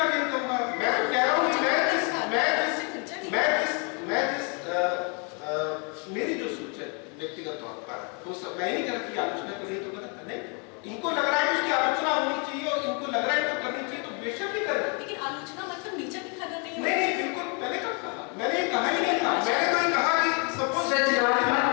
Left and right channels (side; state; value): right; quieter; 35.4 dB